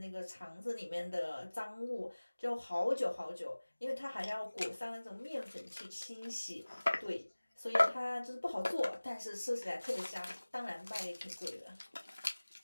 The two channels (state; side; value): inverted; both; correlation -1.00